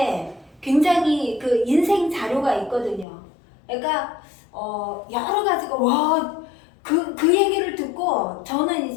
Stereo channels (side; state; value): right; drops out; at 3.1 s